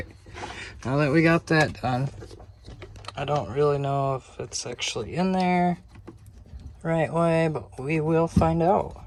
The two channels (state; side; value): identical; both; correlation 1.00